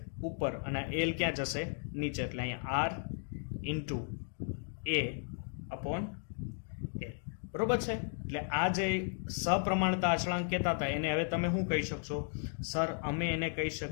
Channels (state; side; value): silent; right; 54 dB below the other